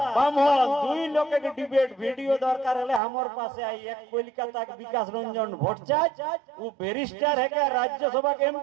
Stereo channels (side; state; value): left; drops out; at 3.0 s